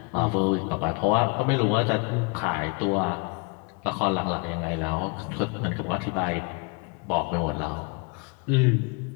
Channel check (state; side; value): quieter; right; 32.1 dB